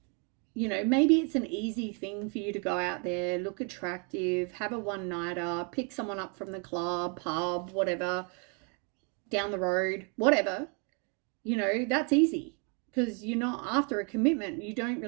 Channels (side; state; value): left; quieter; 37.1 dB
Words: you know, maybe it's an easy thing for you to go out there, look attractive, have a one-nighter, pick someone up from the club, pub, whatever, down the road, whatever. You know, that's easy because you're not after a commitment. You don't